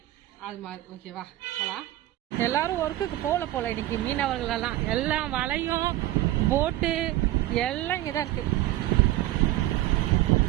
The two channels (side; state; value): left; quieter; 15.5 dB